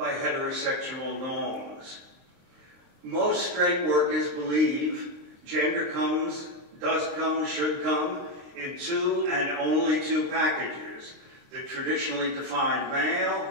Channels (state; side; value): late; left; 23 ms